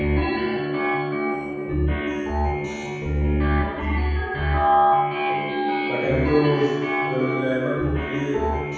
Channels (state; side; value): identical; both; correlation 1.00